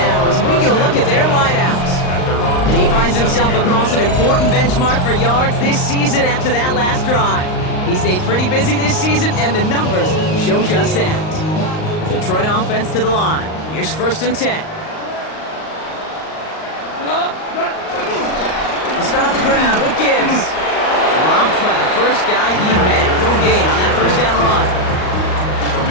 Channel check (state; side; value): late; right; 38 ms